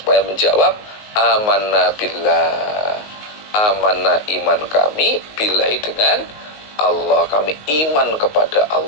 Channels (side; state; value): right; late; 19 ms